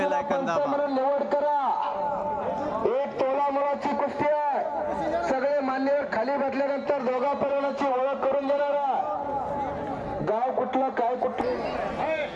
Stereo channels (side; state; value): both; identical; correlation 1.00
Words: आयकॉन दाबा। निवड करा। एक तोला मुलाची कुस्ती आहे। सगळे मान्यवर खाली बसल्यानंतर दोघा परिवाराची ओळख करून देणारा गाव कुठलं काय कुठलं।